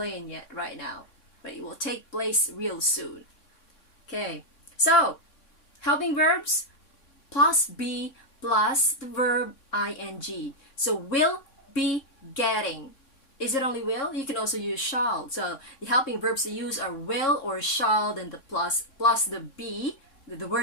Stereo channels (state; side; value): late; right; 3.6 ms